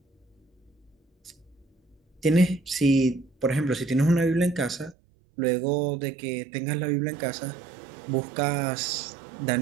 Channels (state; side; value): drops out; left; at 5.0 s